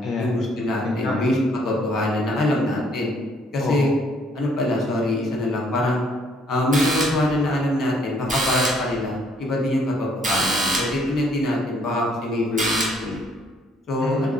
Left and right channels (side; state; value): both; normal; correlation 0.65